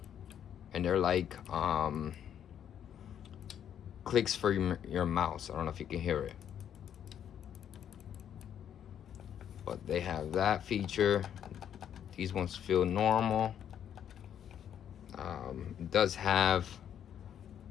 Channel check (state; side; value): quieter; right; 9.4 dB